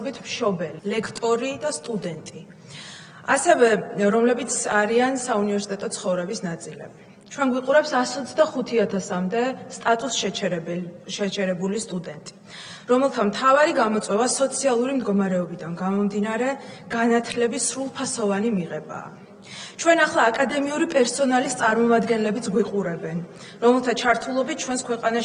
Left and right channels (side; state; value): both; identical; correlation 1.00